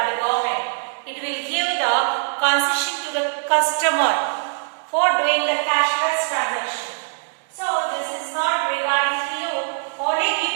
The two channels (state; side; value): silent; left; 64 dB below the other